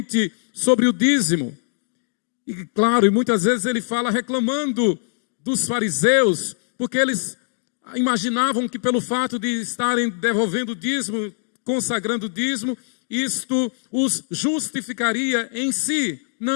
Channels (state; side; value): silent; right; digital silence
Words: sobre o dízimo. E claro, e muitas vezes ele fala reclamando dos fariseus, porque eles imaginavam que pelo fato de estarem devolvendo o dízimo, consagrando o dízimo, isto os justificaria em si.